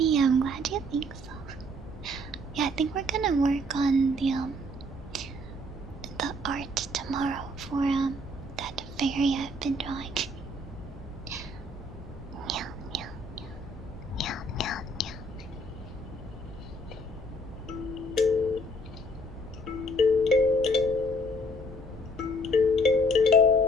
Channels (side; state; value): both; normal; correlation 0.61